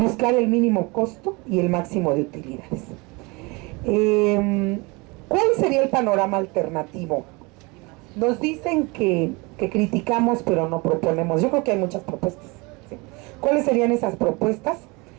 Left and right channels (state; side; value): quieter; left; 26.6 dB